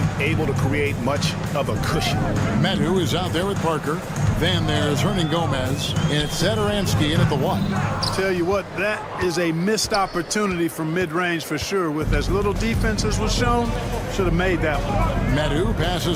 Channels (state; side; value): identical; both; correlation 1.00